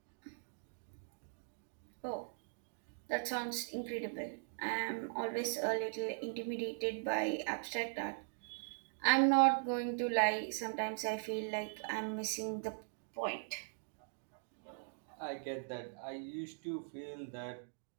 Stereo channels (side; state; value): left; silent; digital silence